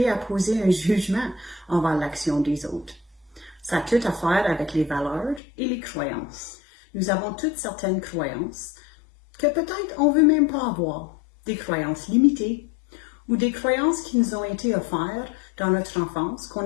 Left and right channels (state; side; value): drops out; right; at 5.4 s